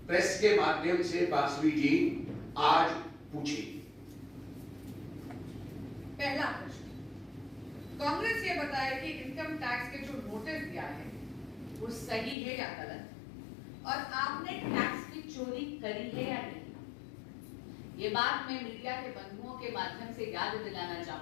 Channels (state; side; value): drops out; right; at 12.4 s